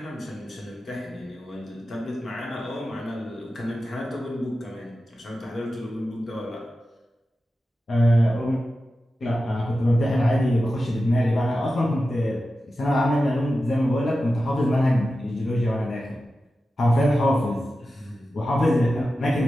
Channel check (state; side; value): normal; both; correlation 0.92